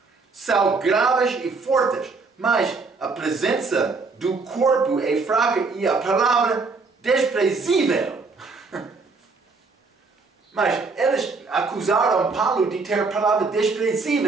são graves e fortes, mas a presença do corpo é fraca e a palavra desprezível. Mas eles acusaram Paulo de ter palavra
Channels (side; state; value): left; quieter; 4.2 dB